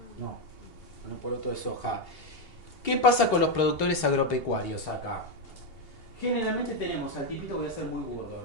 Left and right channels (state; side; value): late; right; 2.8 ms